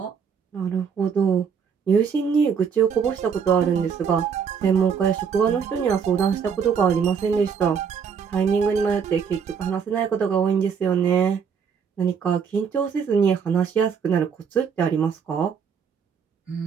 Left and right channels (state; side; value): quieter; left; 6.7 dB